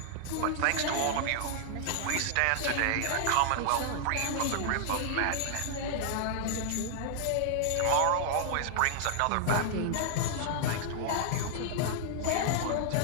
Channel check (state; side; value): different; both; correlation -0.01